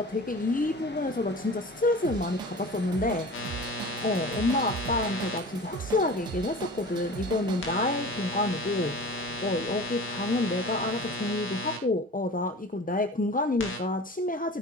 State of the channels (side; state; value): both; normal; correlation 0.38